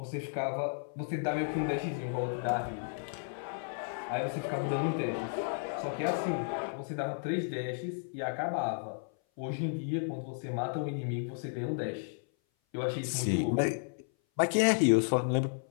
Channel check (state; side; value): silent; right; 56 dB below the other